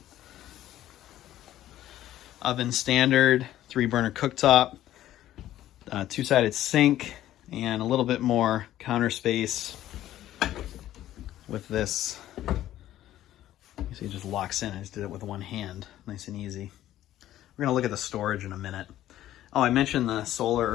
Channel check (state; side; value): quieter; right; 13.2 dB